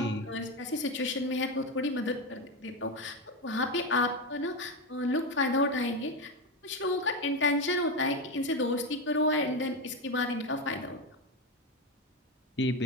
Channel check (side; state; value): both; normal; correlation 0.13